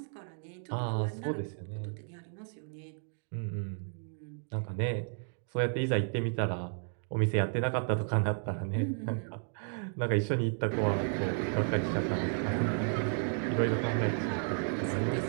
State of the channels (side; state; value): left; silent; 56 dB below the other